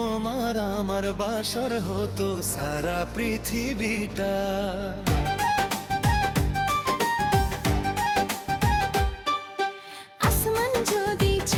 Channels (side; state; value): both; identical; correlation 1.00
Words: আমার বাসর হতো সারা পৃথিবীটা। আসমান যদি